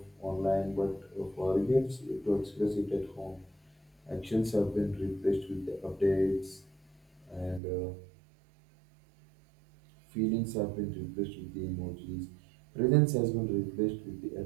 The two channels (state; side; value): drops out; left; at 7.6 s